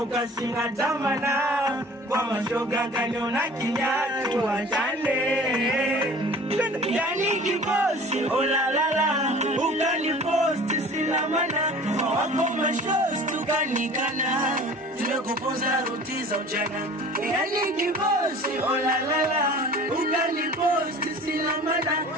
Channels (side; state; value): both; normal; correlation 0.44